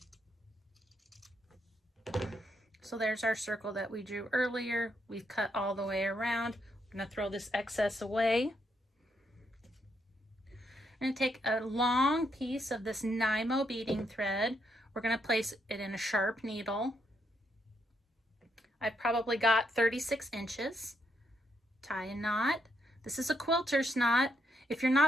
So there's our circle that we drew earlier. We've cut all the way around. I'm going to throw this excess away. We're going to take a long piece of this Nymo beading thread. We're going to place it in a sharp needle. I've probably got 36 inches. Tie a knot. This is a quilter's knot. If you're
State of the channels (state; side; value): normal; both; correlation 0.78